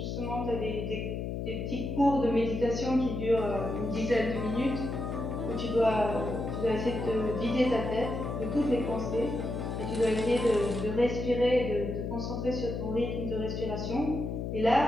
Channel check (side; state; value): left; noise; hum, 4 dB below the sound